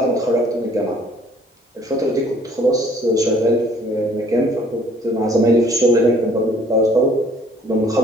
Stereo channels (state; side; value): normal; both; correlation 0.59